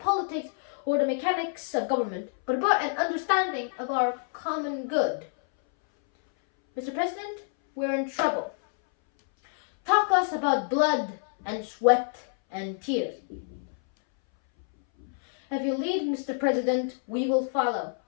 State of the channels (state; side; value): silent; right; 60 dB below the other